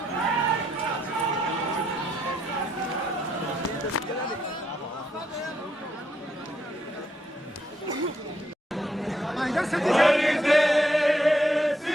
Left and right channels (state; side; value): normal; both; correlation 0.76